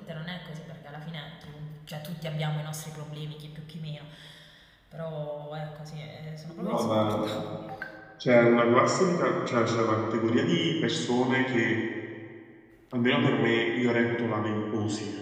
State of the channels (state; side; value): identical; both; correlation 1.00